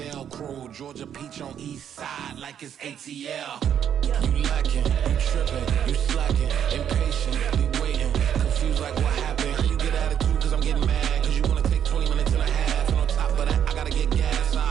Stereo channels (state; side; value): quieter; left; 9.1 dB